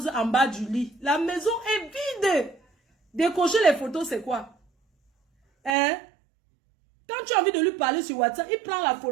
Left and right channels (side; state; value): left; drops out; at 5.8 s